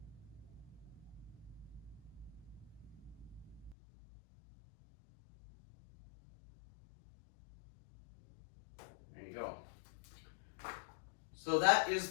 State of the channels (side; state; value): right; drops out; at 3.8 s